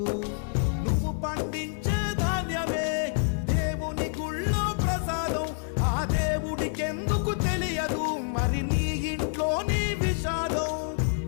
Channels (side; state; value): right; silent; 60 dB below the other